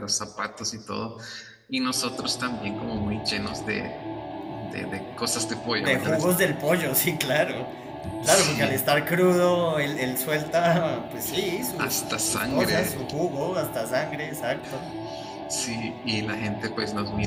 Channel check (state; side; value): identical; both; correlation 1.00